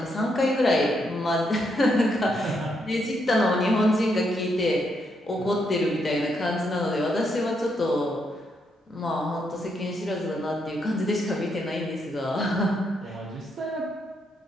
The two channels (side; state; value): both; normal; correlation 0.78